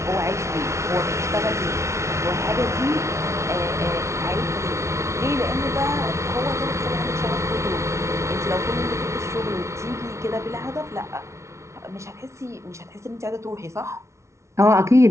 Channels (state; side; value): late; left; 0.14 ms